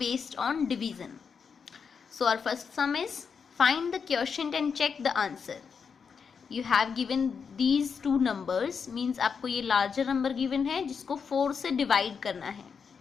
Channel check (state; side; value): quieter; right; 6.1 dB